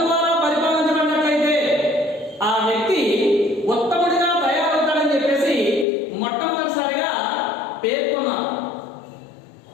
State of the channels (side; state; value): right; drops out; at 5.9 s